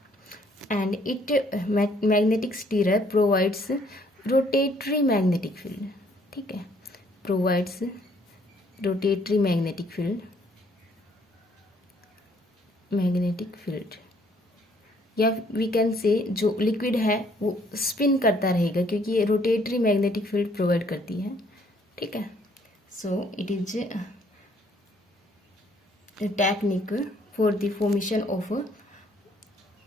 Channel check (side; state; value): both; normal; correlation 0.64